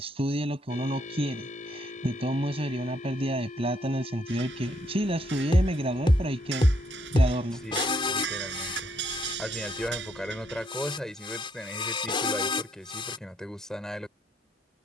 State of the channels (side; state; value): both; normal; correlation 0.72